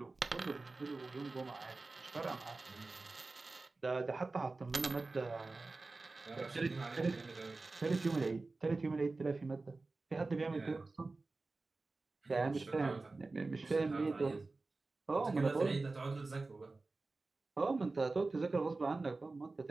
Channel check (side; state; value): left; quieter; 3.5 dB